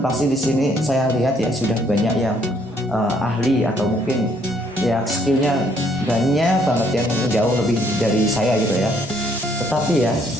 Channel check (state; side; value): normal; both; correlation 0.67